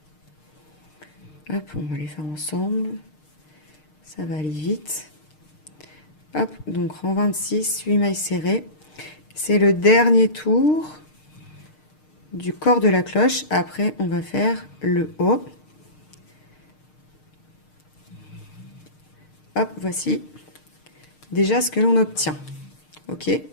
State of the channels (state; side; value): late; right; 6.5 ms